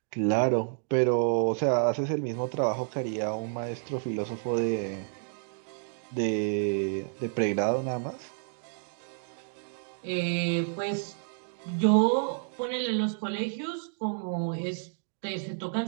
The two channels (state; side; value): silent; left; digital silence